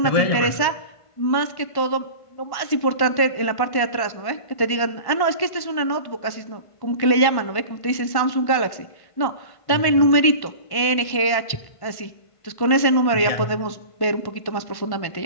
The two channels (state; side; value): late; right; 1.1 ms